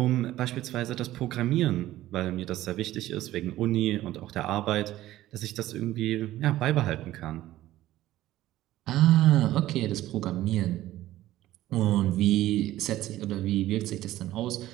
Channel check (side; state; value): left; quieter; 14.9 dB